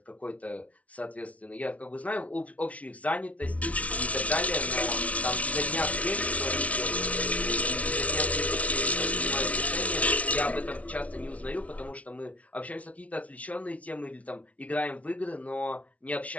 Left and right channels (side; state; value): right; late; 0.066 ms